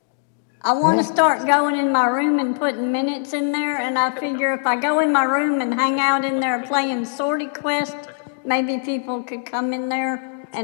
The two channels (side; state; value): right; silent; digital silence